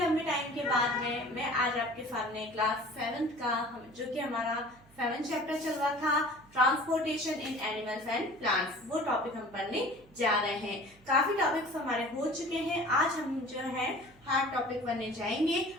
टाइम के बाद में मैं आज आपके सामने क्लास 7th का जो कि हमारा 7th चैप्टर चल रहा था, transportation in animals and plants, वो टॉपिक हम पढ़ने जा रहे हैं। काफी टॉपिक्स हमारे हो चुके हैं। आज हम जो है हार्ड टॉपिक पढ़ने जाएंगे।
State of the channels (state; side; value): noise; right; hum, 27 dB below the sound